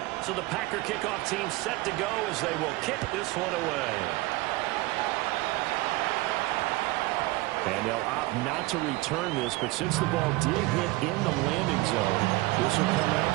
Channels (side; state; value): left; quieter; 20.3 dB